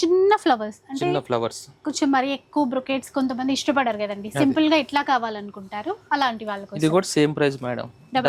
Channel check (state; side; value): identical; both; correlation 1.00